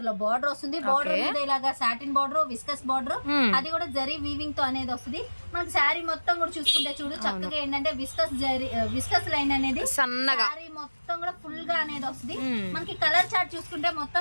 లో బార్డర్ వస్తుంది. బార్డర్ మీద ఇలాగా సాటిన్ బార్డర్, విస్కస్ బార్డర్, అది కూడా జరీ వీవింగ్ తో అనేది వస్తుంది. మనకి శారీ మొత్తం కూడా చూసుకుంటే చూడు చక్కగా ఏంటంటే విస్కస్ లైన్ అనేది సన్నగా శారీ మొత్తం కూడా ఫుల్ గా అనేది వస్తుంది. మనకి కలర్ చార్ట్ చూసుకుంటే మొత్తం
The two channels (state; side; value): inverted; both; correlation -1.00